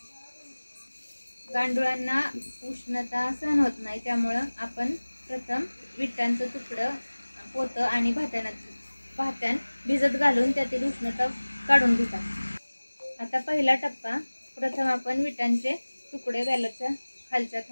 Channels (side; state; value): both; inverted; correlation -1.00